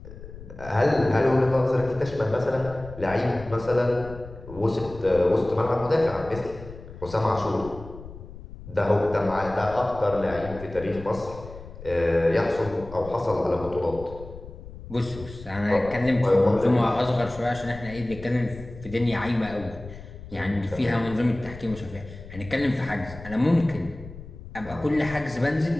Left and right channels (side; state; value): left; noise; rumble, 15 dB below the sound